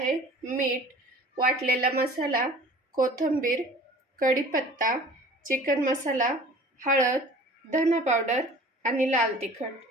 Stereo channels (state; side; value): normal; both; correlation 0.45